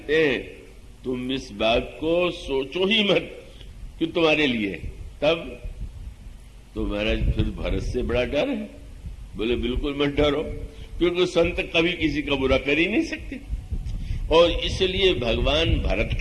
हैं, तुम इस बात को सोचो ही मत कि तुम्हारे लिए। तब तो महाराज फिर भरत से बड़ा डर है? बोले बिल्कुल मत डरो, क्योंकि संत कभी किसी का बुरा कर ही नहीं सकते। और इसलिए भगवान भरत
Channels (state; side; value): identical; both; correlation 1.00